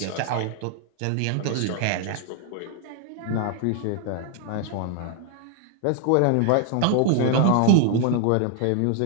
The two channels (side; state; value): both; different; correlation 0.00